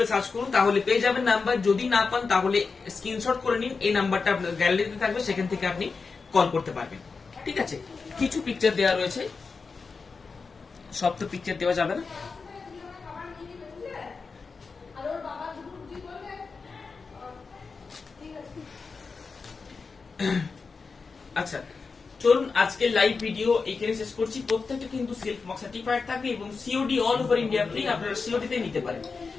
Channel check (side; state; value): right; quieter; 4.7 dB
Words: সার্চ করুন, তাহলে পেয়ে যাবেন নাম্বার। যদি না পান তাহলে স্ক্রিনশট করে নিন, এই নাম্বারটা আপনার গ্যালারিতে থাকবে, সেখান থেকে আপনি কল করতে পারবেন। ঠিক আছে, কিছু পিকচার দেওয়া রয়েছে, সব তো পিকচার দেওয়া যাবে না। আচ্ছা, চলুন আজকে লাইভ ভিডিও এখানে শেষ করছি। প্রত্যেকটা কিন্তু সিল্ক মার্ক সার্টিফাইড থাকবে, এবং COD all over India free. আপনারা সিওডি তে নিতে পারেন।